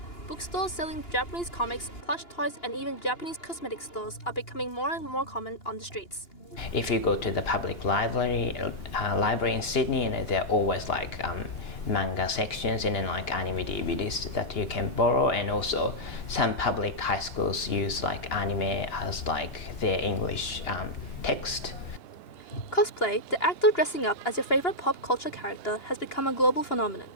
Bookstores selling Japanese comics, plush toys, and even Japanese cosmetic stores are becoming more and more common on the streets. If you go to the public library in Sydney, and there are always like manga sections and then like anime DVDs that you can borrow, and also some public high schools use like anime as like their English text. Cosplay, the act of dressing up as your favorite pop culture character, has become a global phenomenon.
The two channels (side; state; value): right; late; 2.9 ms